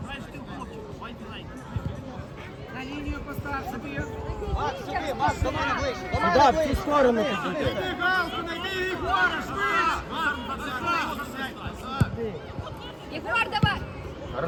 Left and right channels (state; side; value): identical; both; correlation 1.00